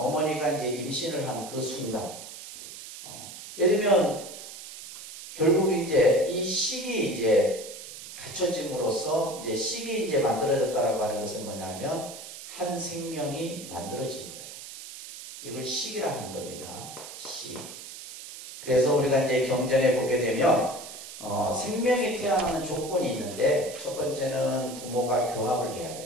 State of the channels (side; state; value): right; noise; hiss, 13 dB below the sound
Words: 이제 임신을 한 그 순간 예를 들면 결국 이제 이 식이 이제 갖춰짐으로써 이제 식이 이제 만들어졌다라고 하는 것은 뭐냐면 한 생명이 만들어진 거예요. 이걸 식이라 하는 겁니다. 식. 그래서 우리가 이제 경전에 보게 되면 생명이 태어나는 조건이 있는데 첫 번째는 부모가 교합을 해야